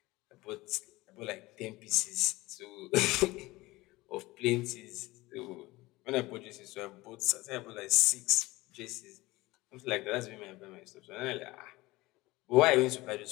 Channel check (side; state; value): right; quieter; 20.2 dB